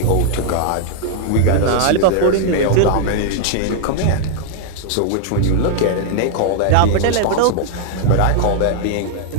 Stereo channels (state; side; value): different; both; correlation -0.01